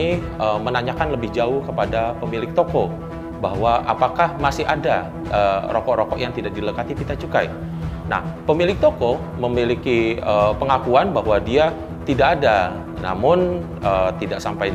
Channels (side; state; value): both; identical; correlation 1.00